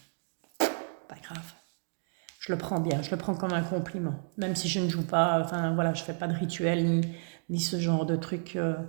Pas grave. Je le prends bien, je le prends comme un compliment, même si je ne joue pas, enfin voilà, je fais pas de rituel ni ce genre de truc,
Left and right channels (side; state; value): left; silent; 57 dB below the other